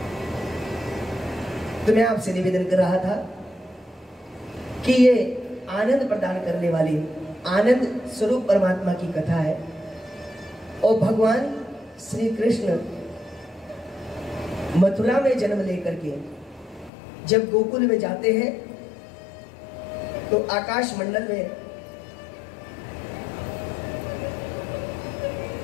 तो मैं आपसे निवेदन कर रहा था कि ये आनंद प्रदान करने वाली आनंद स्वरूप परमात्मा की कथा है, और भगवान श्री कृष्ण मथुरा में जन्म लेकर के जब गोकुल में जाते हैं तो आकाश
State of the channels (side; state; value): right; drops out; at 16.9 s